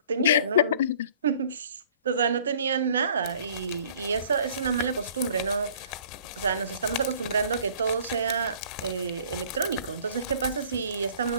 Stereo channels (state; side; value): inverted; both; correlation -0.53